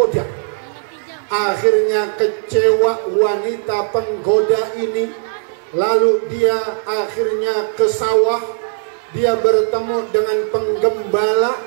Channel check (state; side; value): silent; left; 68 dB below the other